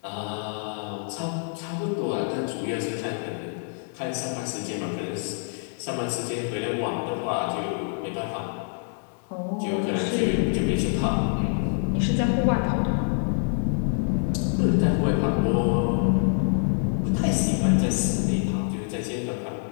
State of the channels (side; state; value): right; silent; 61 dB below the other